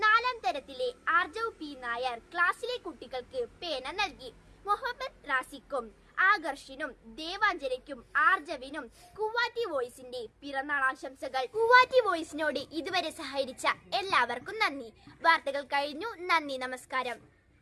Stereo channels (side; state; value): both; identical; correlation 1.00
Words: 4ാം തരത്തിലെ ആർജവ് P നായർ ക്ലാസ്സിലെ കുട്ടികൾക്ക് പേന നൽകി. മുഹമ്മദ് റാസിക്കും ആകർഷിനും ദേവാഞ്ജനയ്ക്കും ആർജവിനും കുവാറ്റി വോയിസിന്റെ പിറന്നാൾ ആശംസകൾ. കുവാറ്റി വോയിസിനോട് ഇതുവരെ സഹകരിച്ച എല്ലാവർക്കും നന്ദി. വാർത്തകൾ കഴിഞ്ഞു. നന്ദി, നമസ്കാരം.